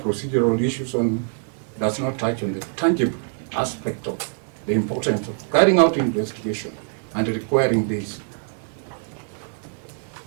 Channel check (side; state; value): left; silent; 59 dB below the other